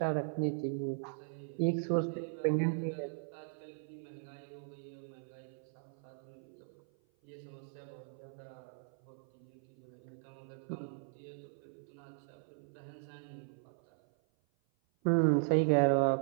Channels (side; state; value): left; silent; 52 dB below the other